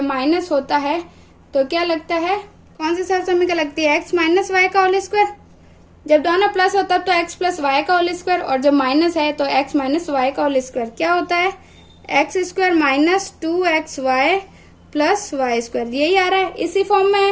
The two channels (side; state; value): both; identical; correlation 1.00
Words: माइनस होता है तो क्या लगता है, कौन सी सर्व समीकरण लगती है x माइनस वाई का होल स्क्वायर, जब दोनों प्लस होता है तो x प्लस वाई का होल स्क्वायर, और जब माइनस है तो x माइनस वाई का होल स्क्वायर क्या होता है x square minus 2xy plus y square, यही आ रहा है, इसी फॉर्म में